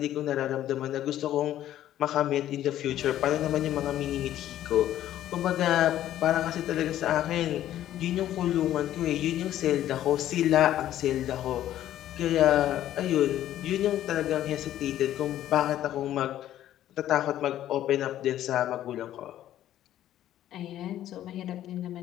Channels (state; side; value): quieter; right; 12.4 dB